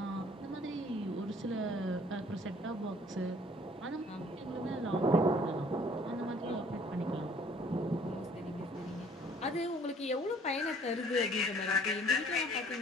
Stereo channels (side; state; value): both; normal; correlation 0.57